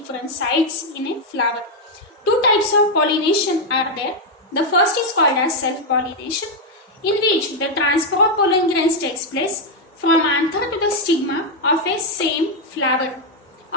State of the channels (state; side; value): normal; both; correlation 0.02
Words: sites in a flower. Two types of pollination are there. The first is called as self-pollination, in which the transfer of pollen grains takes place from anther to the stigma of a same flower